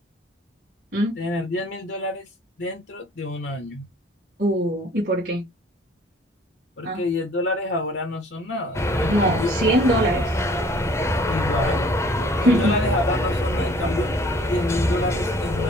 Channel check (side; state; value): both; normal; correlation 0.54